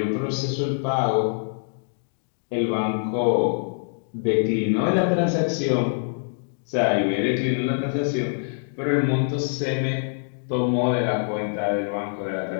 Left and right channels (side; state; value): right; silent; digital silence